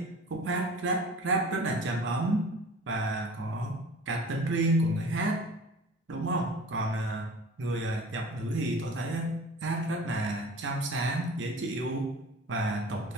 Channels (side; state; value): both; normal; correlation 0.42